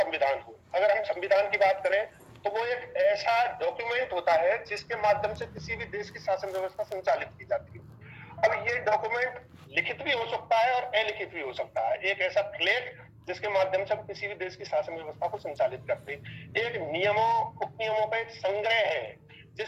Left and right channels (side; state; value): both; identical; correlation 1.00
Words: हो, अगर हम संविधान की बात करें तो वो एक ऐसा डॉक्यूमेंट होता है जिसके माध्यम से किसी भी देश की शासन व्यवस्था संचालित की जाती है। अब ये डॉक्यूमेंट लिखित भी हो सकता है और अलिखित भी हो सकता है। एक ऐसा फ्लैग जिसके माध्यम से हम किसी भी देश की शासन व्यवस्था को संचालित करते हैं। एक नियमों उपनियमों का एक संग्रह है